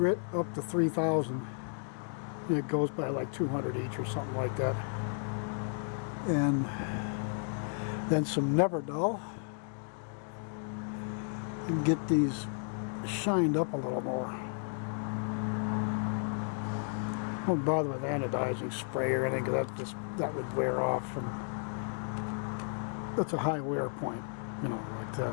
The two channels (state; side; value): silent; right; 55 dB below the other